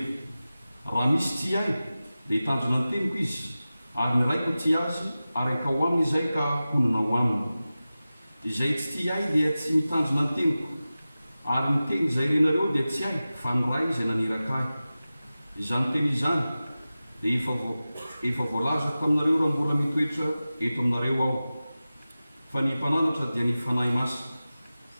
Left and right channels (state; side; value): inverted; both; correlation -0.95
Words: raha misy ty ahy dia hitandrina ny teniko izy, ary ny raiko ty azy ary akao aminy izay ka honina ho aminy. Izay tsy ty ahy dia tsy mitandrina ny teniko, ary ny teny izay renareo dia tsy ahy fa ny ray izay naniraka ahy. Izany teny izany dia efa voalazako aminareo raha mbola mitoetra eto aminareo aho. Fa ny mpananatra dia ny fanahy masina